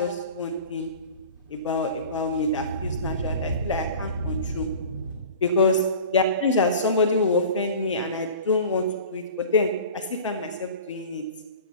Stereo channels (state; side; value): inverted; both; correlation -0.40